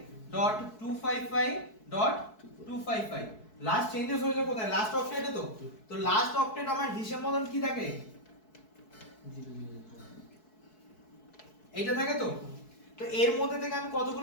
লাস্ট চেঞ্জেস হয়েছে কোথায়? লাস্ট অক্টেটে তো। তো লাস্ট অক্টেট আমার হিসাব মতন কি থাকে? এইটা থাকে তো। তো এর মধ্যে থেকে আমি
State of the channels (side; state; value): right; late; 4.6 ms